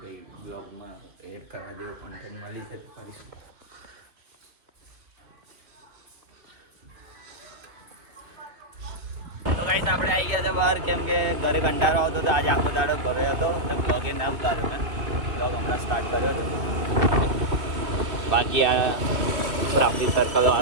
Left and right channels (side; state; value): left; late; 2.8 ms